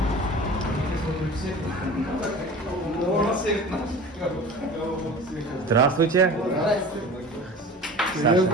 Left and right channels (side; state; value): both; normal; correlation 0.38